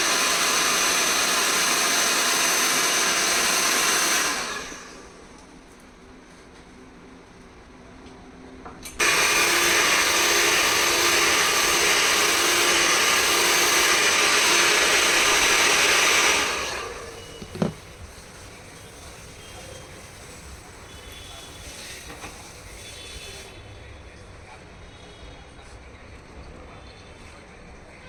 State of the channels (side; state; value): both; identical; correlation 1.00